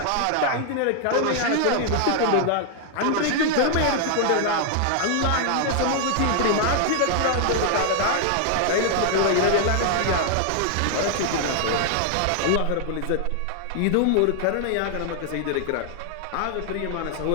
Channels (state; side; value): different; both; correlation 0.00